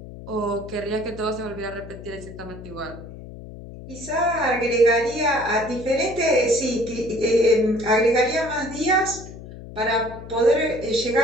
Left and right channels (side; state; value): left; noise; hum, 14 dB below the sound